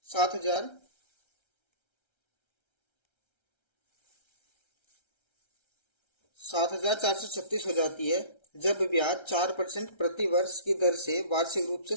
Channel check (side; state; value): right; late; 1.3 ms